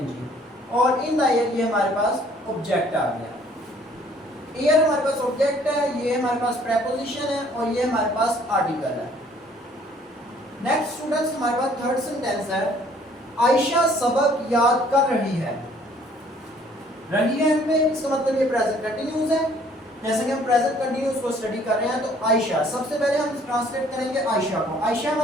और इन द एयर ये हमारे पास ऑब्जेक्ट आ गया। एयर हमारे पास ऑब्जेक्ट है, ये हमारे पास प्रेपोजिशन है, और ये हमारे पास आर्टिकल है। नेक्स्ट स्टूडेंट्स हमारे पास थर्ड सेंटेंस है। आयशा सबक याद कर रही है। रही है में इसका मतलब ये प्रेजेंट कंटिन्यूस है। जैसे कि हम प्रेजेंट कंटिन्यूस को स्टडी कर रहे हैं, तो आयशा, सबसे पहले हम ट्रांसलेट करेंगे आयशा को। आयशा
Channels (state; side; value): normal; both; correlation 0.59